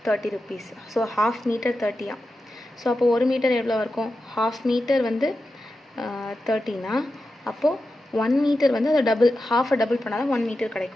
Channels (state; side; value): normal; both; correlation 0.91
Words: 30 rupees. So half meter 30. So அப்போது 1 மீட்டர் எவ்வளோ இருக்கும்? half மீட்டர் வந்து 30னா அப்போது 1 மீட்டர் வந்து அதை half-அ டபுள் பண்ணால் தான் 1 மீட்டர்